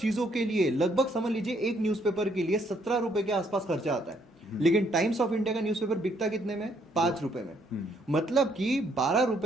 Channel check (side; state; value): both; normal; correlation 0.69